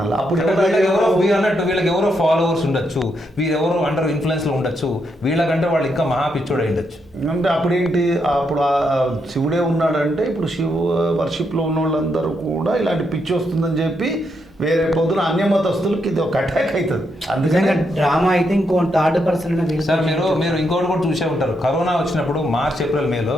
అప్పుడు అన్నట్టు వీళ్ళకి ఎవరో ఫాలోవర్స్ ఉండొచ్చు, వీరెవరో అండర్ ఇన్ఫ్లుయెన్స్లో ఉండొచ్చు, వీళ్ళకంటే వాళ్ళు ఇంకా మహా పిచ్చోడు ఉండొచ్చు. అంటే అప్పుడేంటి, అప్పుడు శివుడే ఉన్నాడంటే ఇప్పుడు శివ వర్షిప్లో ఉన్న వాళ్ళందరూ కూడా ఇలాంటి పిచ్చి వస్తుందని చెప్పి వేరే పొద్దున అన్యమతస్తులకి ఇది ఒక అటాక్ అవుతుంది. అందుకని డ్రామా అయితే ఇంకో థర్డ్ పర్సన్. సార్ మీరు ఇంకోటి కూడా చూసే ఉంటారు, కరోనా వచ్చినప్పుడు మార్చ్ ఏప్రిల్ మేలో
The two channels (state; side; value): normal; both; correlation 0.80